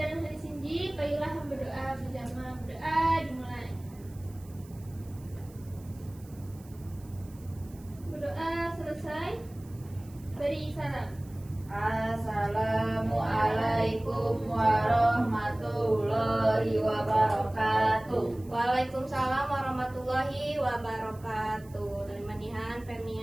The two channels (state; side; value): noise; right; hiss, 25 dB below the sound